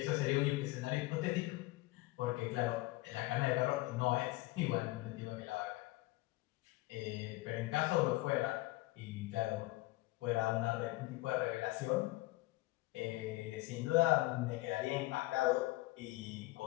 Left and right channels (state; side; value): quieter; right; 20.0 dB